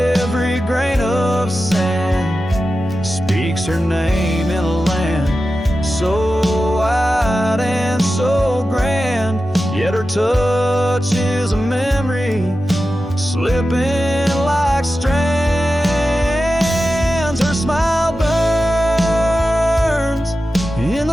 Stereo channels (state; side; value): normal; both; correlation 0.93